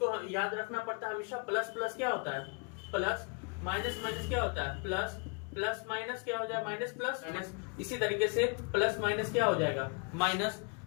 याद रखना पड़ता है हमेशा, प्लस प्लस क्या होता है प्लस, माइनस माइनस क्या होता है प्लस, प्लस माइनस क्या हो जाएगा माइनस प्लस माइनस, इसी तरीके से प्लस माइनस क्या हो जाएगा माइनस।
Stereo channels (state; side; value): quieter; right; 33.6 dB